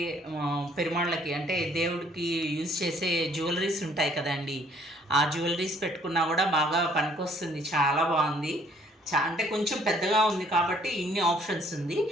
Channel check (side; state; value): both; normal; correlation 0.62